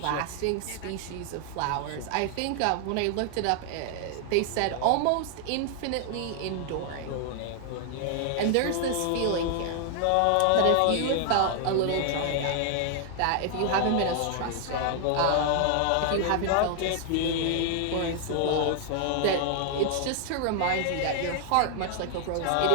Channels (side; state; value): both; different; correlation 0.00